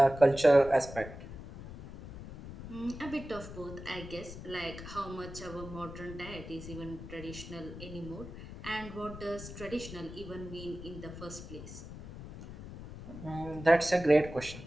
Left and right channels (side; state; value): left; noise; rumble, 12 dB below the sound